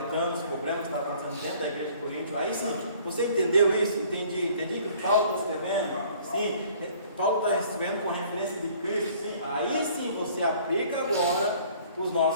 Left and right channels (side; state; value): both; inverted; correlation -0.55